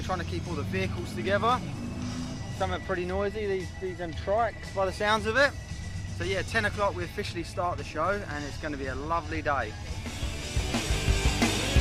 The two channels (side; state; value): both; identical; correlation 1.00